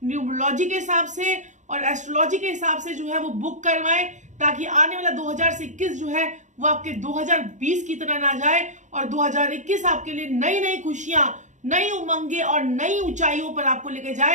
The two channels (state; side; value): late; left; 0.35 ms